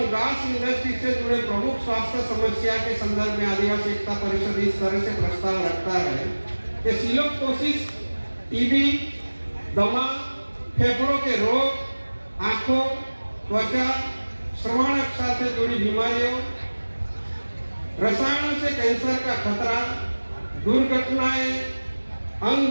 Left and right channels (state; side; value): inverted; both; correlation -1.00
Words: घास इंडस्ट्री से जुड़े प्रमुख स्वास्थ्य समस्या के संदर्भ में आदिवासी एकता परिषद इस तरह से प्रस्ताव रखता है कि सिलोकोसिस, टीबी, दमा, फेफड़ों के रोग, आंखों, त्वचा, श्रवण रक्षा से जुड़ी बीमारियों, रसायनों से कैंसर का खतरा, दुर्घटनाएं, अंग